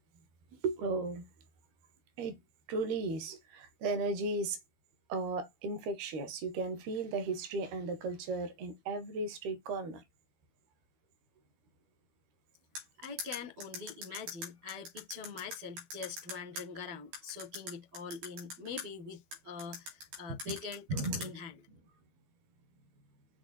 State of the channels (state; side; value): late; left; 12 ms